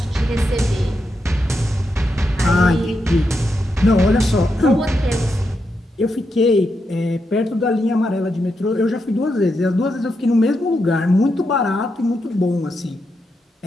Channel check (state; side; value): normal; both; correlation 0.84